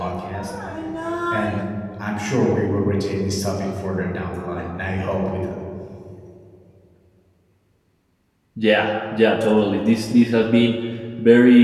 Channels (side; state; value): both; identical; correlation 1.00